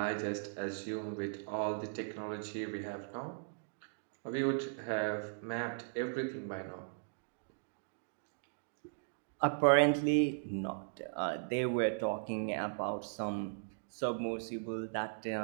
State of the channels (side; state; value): left; silent; digital silence